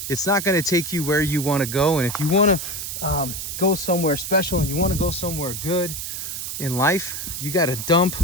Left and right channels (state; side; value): noise; right; hiss, 6 dB below the sound